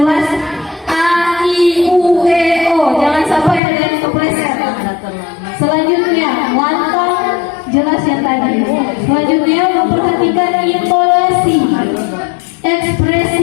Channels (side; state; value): right; drops out; at 3.6 s